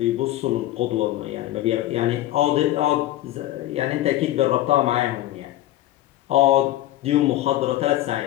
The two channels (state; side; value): quieter; right; 14.6 dB